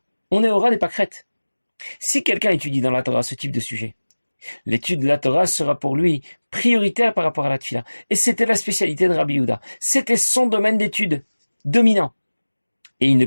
On est au ras des pâquerettes. Si quelqu'un étudie dans la Torah ce type de sujet, l'étude de la Torah sera pour lui prioritaire par rapport à la tefila. Et c'était la spécialité de Rabbi Yehuda. C'était son domaine d'étude dominant. Et il ne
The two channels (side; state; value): both; inverted; correlation -1.00